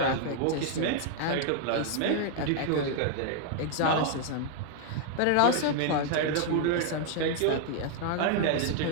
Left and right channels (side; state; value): both; different; correlation 0.00